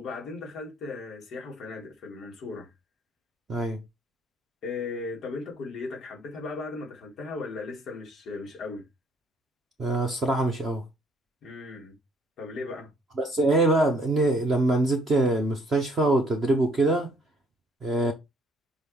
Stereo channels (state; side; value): normal; both; correlation 0.63